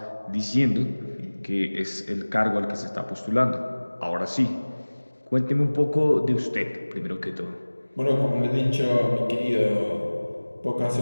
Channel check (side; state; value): both; inverted; correlation -1.00